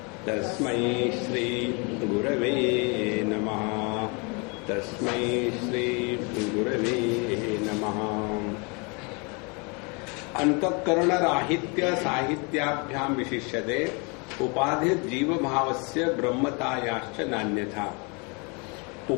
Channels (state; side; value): quieter; right; 31.8 dB